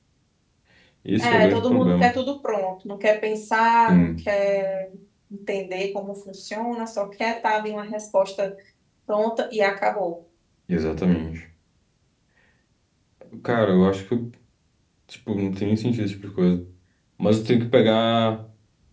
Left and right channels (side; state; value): both; identical; correlation 1.00